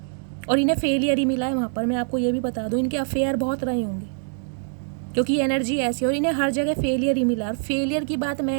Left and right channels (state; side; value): silent; left; 63 dB below the other